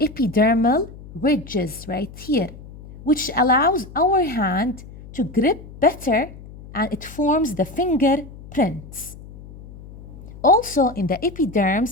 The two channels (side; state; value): left; noise; hum, 17 dB below the sound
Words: ridges right here, which allows our hand to grip better, and it forms the fingerprints. Also in the